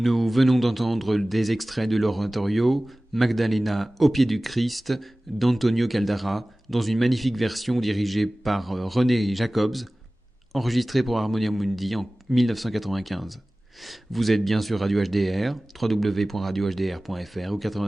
venons d'entendre des extraits de l'oratorio Magdalena au pied du Christ d'Antonio Caldara dans une magnifique version dirigée par René Jacobs, enregistrée pour Harmonia Mundi en 1995. Vous êtes bien sur Radio HDR, www.radiohdr.fr ou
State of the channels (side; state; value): both; normal; correlation 0.98